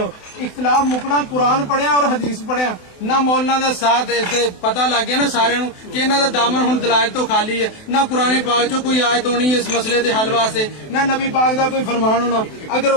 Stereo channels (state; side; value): late; right; 28 ms